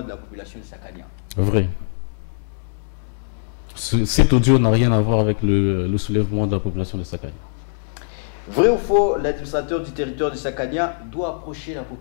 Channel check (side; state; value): right; silent; 64 dB below the other